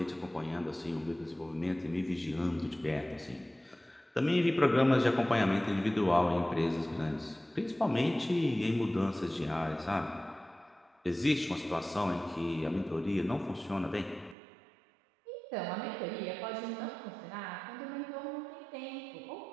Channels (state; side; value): drops out; left; at 14.4 s